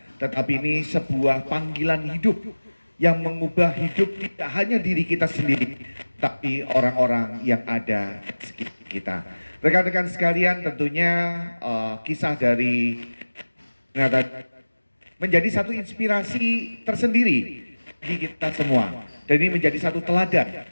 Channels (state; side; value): inverted; both; correlation -1.00